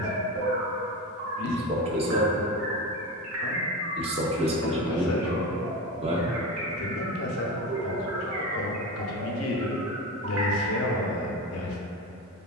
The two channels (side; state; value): both; normal; correlation 0.23